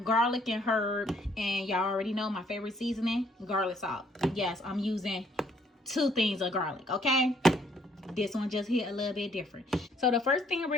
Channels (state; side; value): normal; both; correlation 0.65